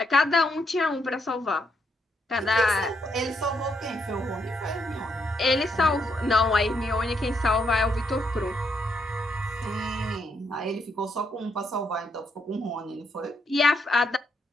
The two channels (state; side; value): normal; both; correlation 0.77